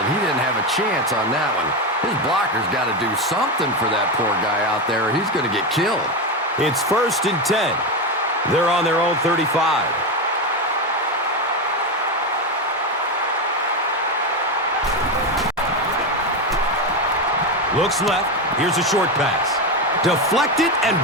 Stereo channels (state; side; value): normal; both; correlation 0.13